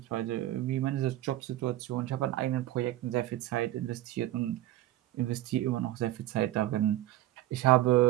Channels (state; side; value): quieter; left; 15.0 dB